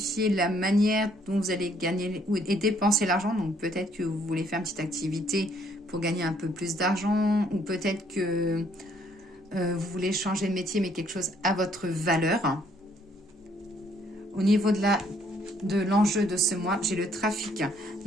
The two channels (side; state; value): both; normal; correlation 0.66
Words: la manière dont vous allez gagner et dépenser l'argent. Donc peut-être que vous voulez faire une petite activité pour gagner un peu plus d'argent. Ou peut-être que vous voulez changer de métier, mais quelque chose à votre valeur. Au niveau de l'enjeu de ce mois, j'ai le trafic.